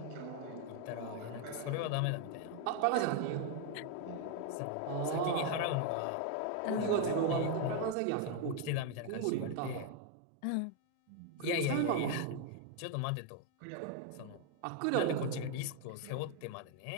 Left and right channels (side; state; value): both; different; correlation 0.00